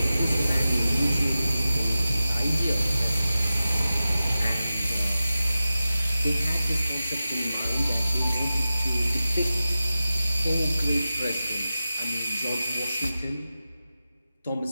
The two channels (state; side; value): inverted; both; correlation -0.94